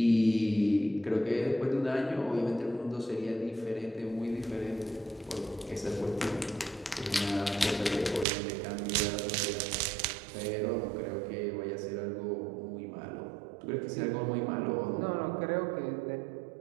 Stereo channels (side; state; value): left; drops out; at 8.2 s